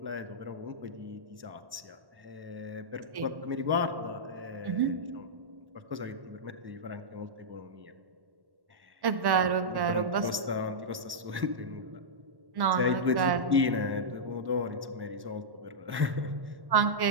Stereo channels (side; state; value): left; late; 1.1 ms